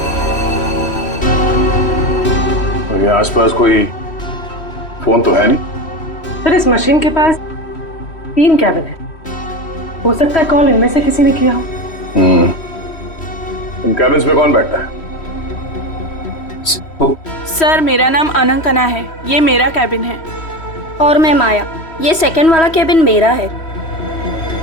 और ये आसपास कोई फोन तो है नहीं? सर, इस मशीन के पास 3 कैबिन है, हो सकता है कॉल इनमें से किसी ने किया हो। इन कैबिन्स में कौन बैठता है? सर, मेरा नाम अनंकना है, ये मेरा कैबिन है। और मैं माया, ये सेकंड वाला कैबिन मेरा है।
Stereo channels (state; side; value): late; right; 3.1 ms